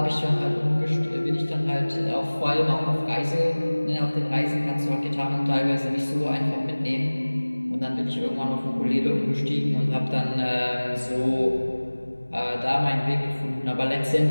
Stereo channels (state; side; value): inverted; both; correlation -1.00